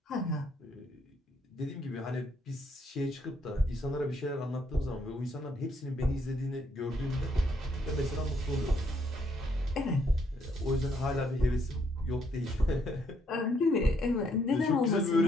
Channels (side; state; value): both; normal; correlation 0.71